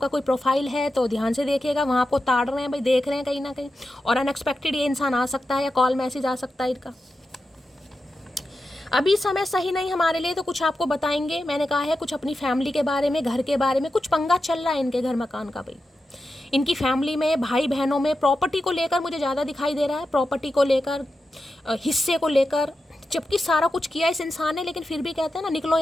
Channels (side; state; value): both; normal; correlation 0.90